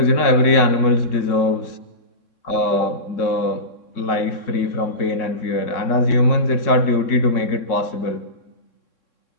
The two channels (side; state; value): right; late; 3.6 ms